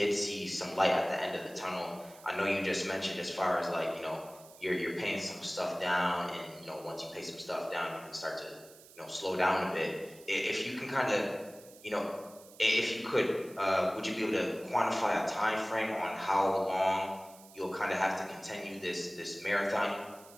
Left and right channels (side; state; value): right; noise; hiss, 22 dB below the sound